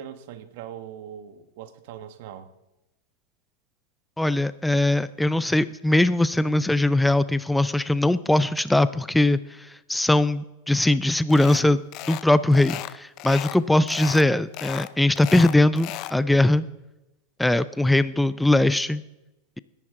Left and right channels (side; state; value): both; normal; correlation 0.96